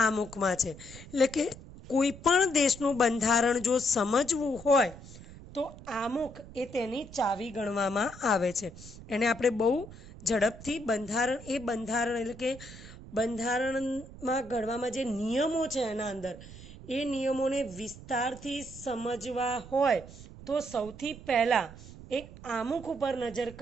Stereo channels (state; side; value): noise; right; rumble, 16 dB below the sound